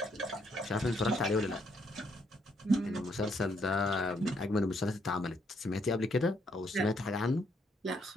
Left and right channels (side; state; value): both; normal; correlation 0.72